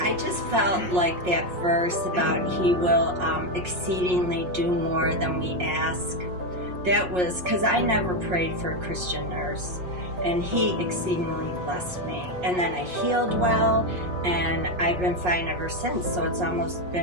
I just felt like that verse about He will exceedingly do more than we ask. That was because I never prayed for a Christian nurse, and He exceedingly blessed me. And then I healed well, and I've been fine ever since, so it's almost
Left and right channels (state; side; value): late; left; 5.5 ms